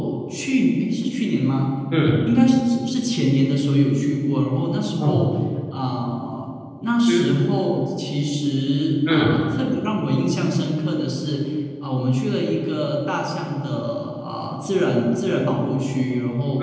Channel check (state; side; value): identical; both; correlation 1.00